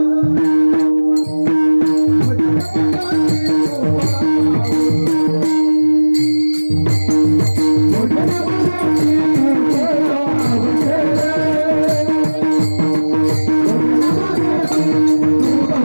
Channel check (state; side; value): inverted; both; correlation -1.00